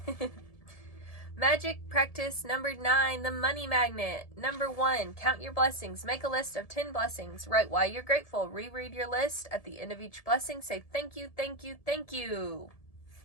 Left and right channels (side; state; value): right; late; 1.7 ms